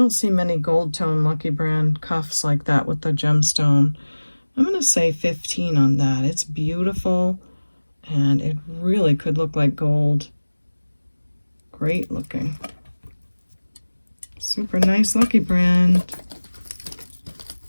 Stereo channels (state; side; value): inverted; both; correlation -1.00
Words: see many gold tone Lucky brand cuffs like that with the gemstone. I'm going to say 15 on that. It's beautiful, and it really could look like gold. Great looking. Super nice Lucky brand.